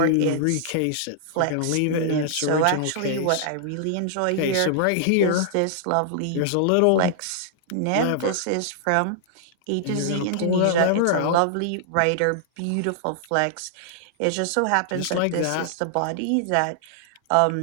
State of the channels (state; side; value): different; both; correlation -0.01